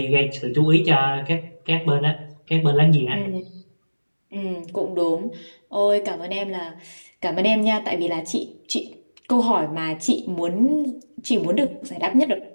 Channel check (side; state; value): both; inverted; correlation -1.00